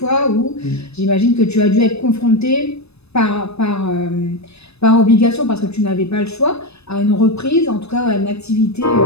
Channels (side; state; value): right; late; 0.79 ms